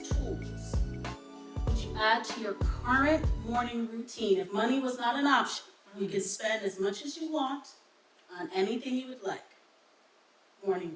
tools would you add to your current morning routine? If money was not an option, you can spend as much as you want on anything you would like. Morning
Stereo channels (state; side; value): identical; both; correlation 1.00